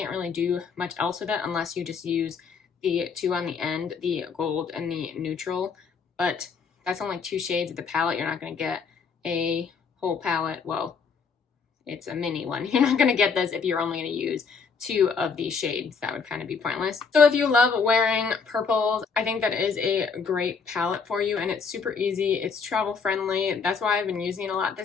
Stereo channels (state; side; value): quieter; right; 5.4 dB